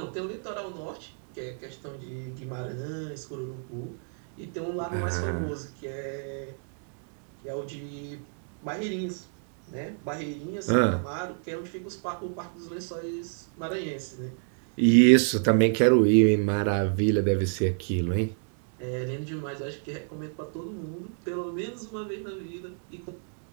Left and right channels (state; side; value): silent; left; 58 dB below the other